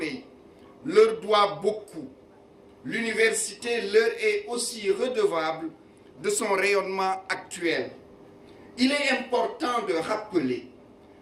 leur doit beaucoup. L'université leur est aussi redevable de son rayonnement actuel. Il est important de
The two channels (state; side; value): identical; both; correlation 1.00